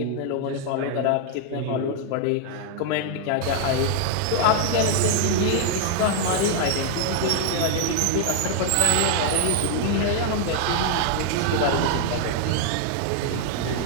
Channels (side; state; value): both; different; correlation 0.00